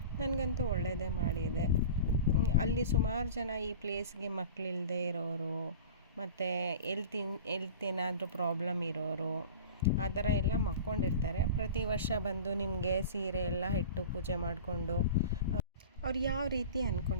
ನನಗಂತೂ ಒಳ್ಳೆಯದೇ ಮಾಡಿದೆ. ಅಲ್ಲಿ ಸುಮಾರು ಜನ ಈ ಪ್ಲೇಸ್ಗೆ ಮಕ್ಕಳಿಲ್ಲದೆ ಇರೋರು, ಮತ್ತು ಎಲ್ತ್ ಏನಾದರೂ ಪ್ರಾಬ್ಲಮ್ ಇರೋರು ಆ ಥರ ಎಲ್ಲ ಮಕ್ಕೊಂಡಿರ್ತಾರೆ. ಪ್ರತಿ ವರ್ಷ ಬಂದು ನಿಮಗೆ ಸೀರೆ ಎಲ್ಲ ಇಟ್ಟು ಪೂಜೆ ಮಾಡಿಕೊಂಡು ಅವ್ರು ಯಾವ ರೀತಿ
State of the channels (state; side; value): inverted; both; correlation -0.37